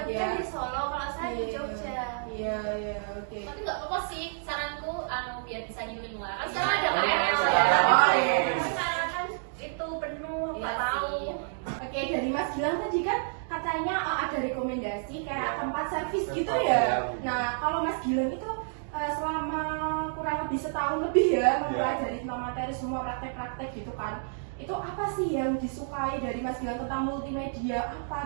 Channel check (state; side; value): silent; left; digital silence